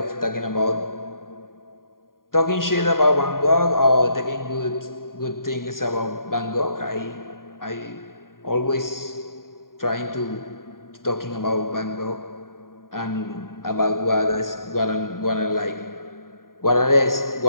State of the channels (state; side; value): late; right; 0.91 ms